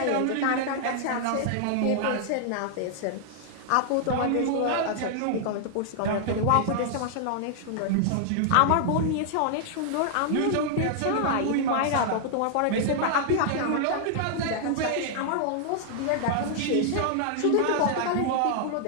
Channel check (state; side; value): different; both; correlation -0.01